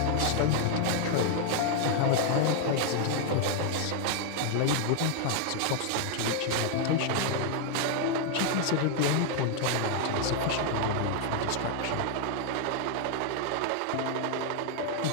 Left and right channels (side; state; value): both; different; correlation 0.00